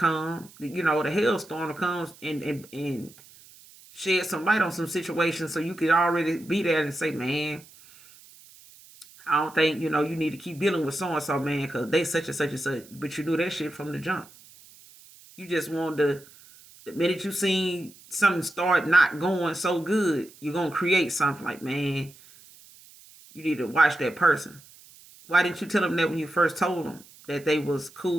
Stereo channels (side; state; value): right; noise; hiss, 23 dB below the sound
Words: the hailstorm to come and shed some light on some situations so you could already be there and say, man, I don't think, you need to keep dealing with so-and-so, man, because they such and such and such. But you knew that shit from the jump. You just wanted to, the minute you seen something start not going so good, you're going to create something like, man, you need to watch that person. Why didn't you tell them that when you first told them that they was